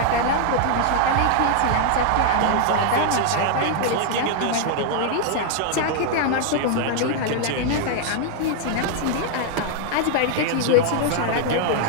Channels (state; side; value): different; both; correlation 0.00